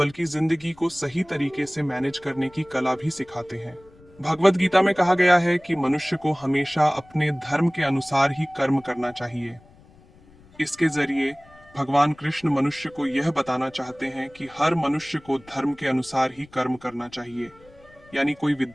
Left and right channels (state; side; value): noise; left; rumble, 26 dB below the sound